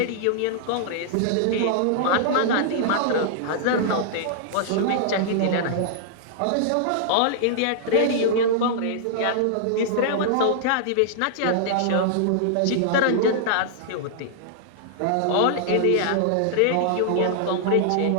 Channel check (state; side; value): different; both; correlation -0.01